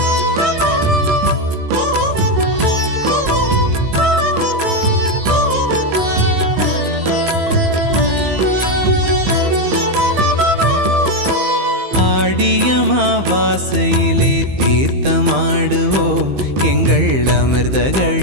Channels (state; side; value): late; left; 15 ms